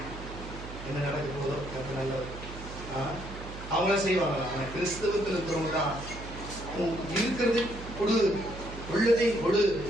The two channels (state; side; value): noise; right; hum, 11 dB below the sound